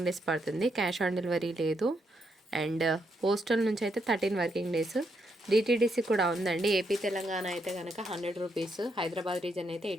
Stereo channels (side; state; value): both; normal; correlation 0.78